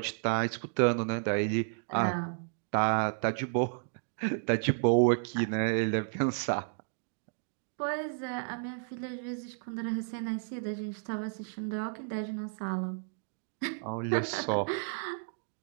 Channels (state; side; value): silent; left; digital silence